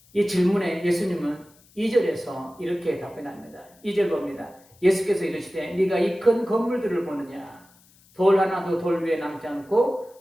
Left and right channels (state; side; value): noise; left; hiss, 29 dB below the sound